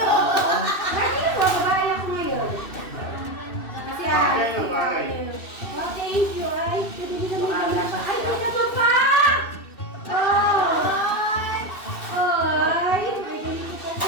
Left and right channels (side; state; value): right; late; 2.6 ms